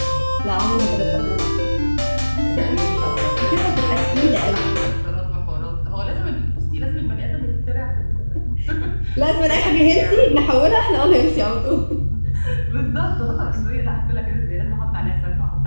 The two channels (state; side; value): inverted; both; correlation -1.00